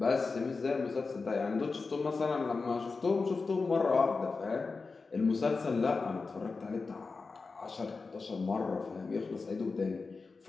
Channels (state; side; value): quieter; right; 4.2 dB